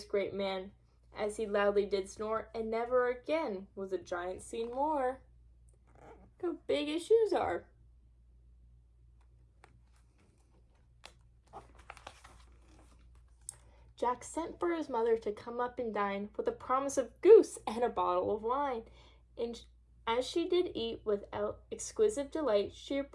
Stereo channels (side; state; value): both; identical; correlation 1.00